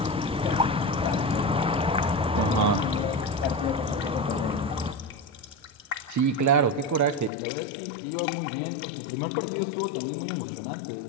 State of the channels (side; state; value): right; drops out; at 7.3 s